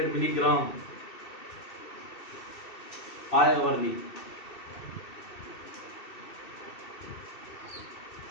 milligram 5 hourly.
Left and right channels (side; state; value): right; late; 2.7 ms